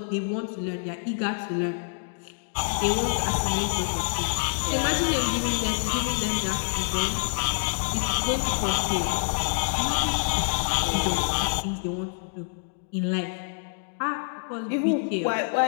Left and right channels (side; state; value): right; silent; digital silence